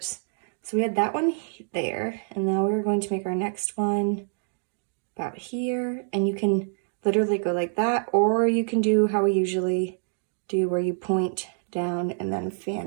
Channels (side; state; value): left; silent; digital silence